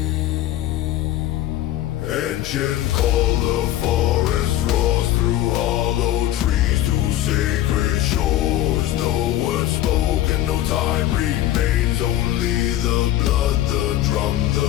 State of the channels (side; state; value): right; quieter; 13.5 dB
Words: Ancient call, the forest roars through hollow trees to sacred shores. No word spoken, no time remains, only the blood, the drum,